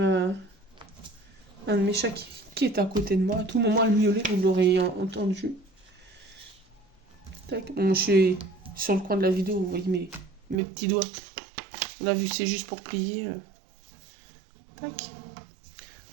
de mes chats qui est à côté de moi. À tout moment, elle miaulait, vous l'aurez entendu. Tac. Bon, je suis sur le coin de la vidéo, vous voyez mes petits doigts. Là, vu que c'est juste pour plier. Tac.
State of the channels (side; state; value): left; drops out; at 10.6 s